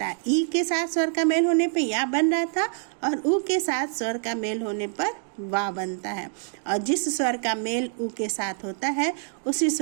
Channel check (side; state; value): left; silent; 61 dB below the other